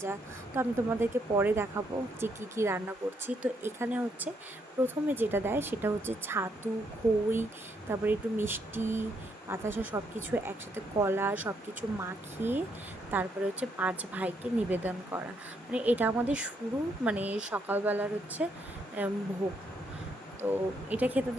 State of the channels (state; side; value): normal; both; correlation 0.75